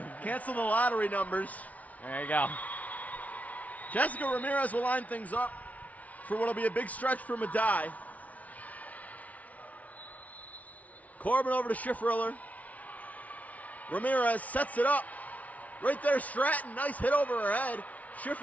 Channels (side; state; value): right; late; 0.070 ms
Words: Cancel the lottery numbers. There you go. Jessica Ramirez will line things up for what will be a big stretch for Medaille. Corbin over to Schifferler. Ramirez sets it up. Right there, Stratton. Nice hit over her head.